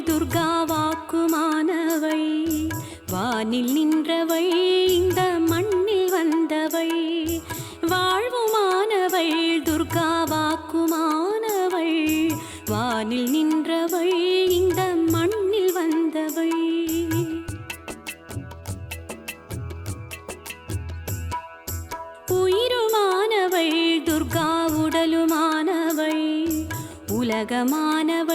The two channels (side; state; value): both; identical; correlation 1.00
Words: துர்கா வாக்குமானவள் வானில் நின்றவள் இந்த மண்ணில் வந்தவள் வாழ்வுமானவள் துர்கா வாக்குமானவள் வானில் நின்றவள் இந்த மண்ணில் வந்தவள் உயிருமானவள் துர்கா உடலுமானவள்